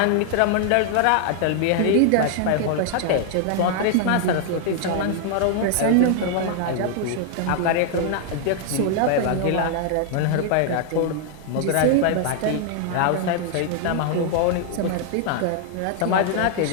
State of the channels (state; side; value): different; both; correlation 0.00